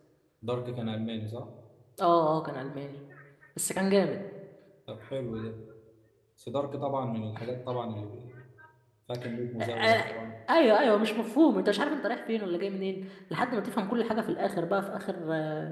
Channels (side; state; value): both; identical; correlation 1.00